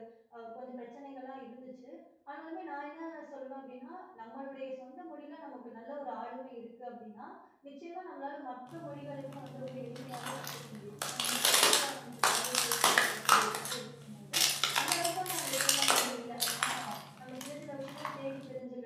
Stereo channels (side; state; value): both; identical; correlation 1.00